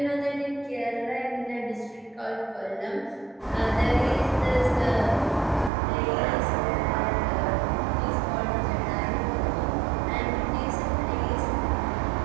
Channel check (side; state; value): left; drops out; at 5.7 s